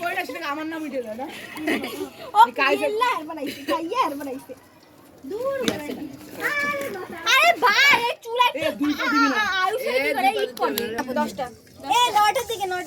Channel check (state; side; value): identical; both; correlation 1.00